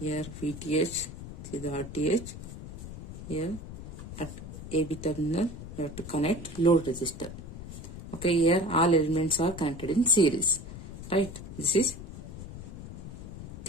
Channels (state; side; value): noise; left; rumble, 11 dB below the sound